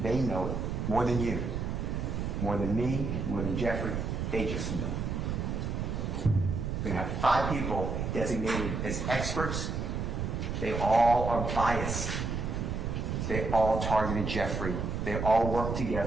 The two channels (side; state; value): right; noise; rumble, 2 dB below the sound